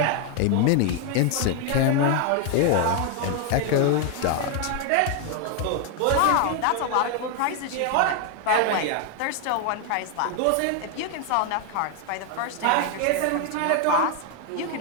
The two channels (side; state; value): both; different; correlation 0.00